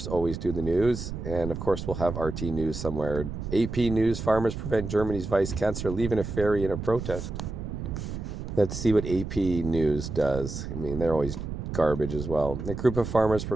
always do the news, and of course we'll have RT News somewhere. AP News: farmers prevent Germany's vice chancellor leaving a ferry in a protest. Let's see what AP News does. I mean, they're always garbage as well. A group of farmers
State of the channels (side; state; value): right; noise; rumble, 6 dB below the sound